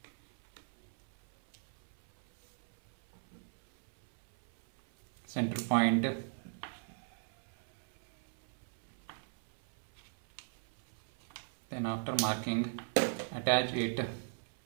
center point. Then after marking, attach it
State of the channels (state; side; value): silent; left; 52 dB below the other